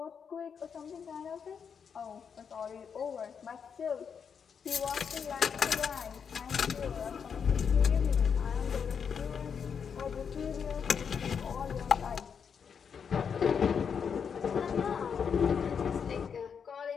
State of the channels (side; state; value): right; quieter; 6.8 dB